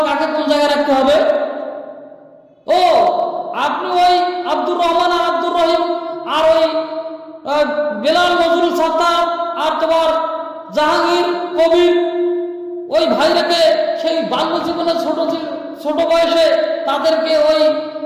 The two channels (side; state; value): both; identical; correlation 1.00